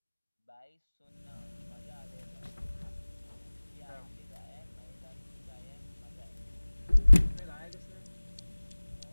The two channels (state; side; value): inverted; both; correlation -1.00